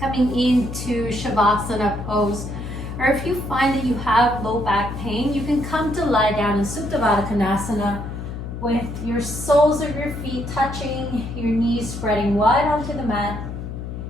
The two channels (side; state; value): left; noise; hum, 7 dB below the sound